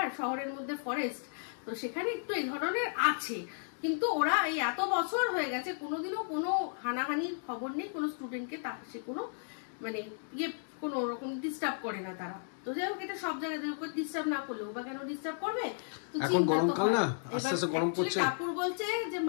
শহরের মধ্যে ফরেস্ট, তো সেখানে একটু এই ধরনের আছে। কিন্তু ওরা এই এত বছর হয়ে গেছে কোনোদিনও কোনো হানাহানির খবর নেই, কোনো স্টুডেন্টকে সে কোনো মানে কোনো রকম ডিস্টার্ব করে না তারা। তো যাই হোক এটা সব জায়গায় ডিস্টার্ব না করলেও বা কেন ডিস্টার্ব করবে, এখন গরমকাল না, আস্তে আস্তে গরম পড়ছে। কাপুর বলছে যে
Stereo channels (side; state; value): right; silent; digital silence